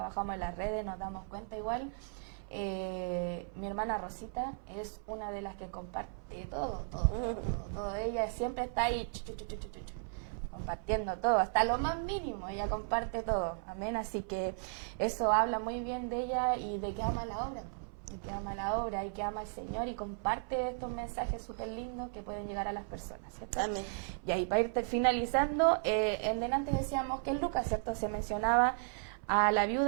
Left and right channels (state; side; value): silent; left; 54 dB below the other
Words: en las redes, nos damos cuenta igual. Mi hermana Rosita es una de las que comparte todo. Ella siempre está ahí compartiendo todo, hasta lo más mínimo, ella comparte todo, amén. Así que eso habla muy bien de ella y de que ama la obra. Y que ama la obra y que ama al Señor y comparte estos mensajes súper lindos que pueden llegar a las personas, ¿cierto? Amén. Y ahí para ir finalizando, en delante decíamos que en Lucas, ¿cierto? Se mencionaba a la